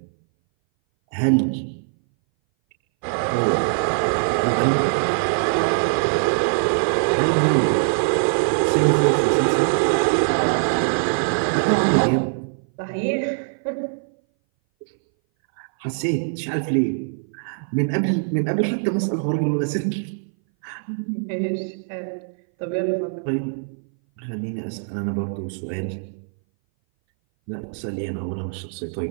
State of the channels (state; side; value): silent; left; 60 dB below the other